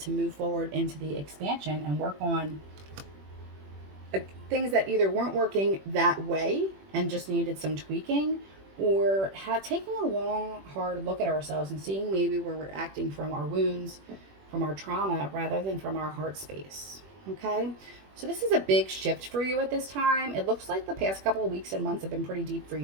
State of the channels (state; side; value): late; left; 21 ms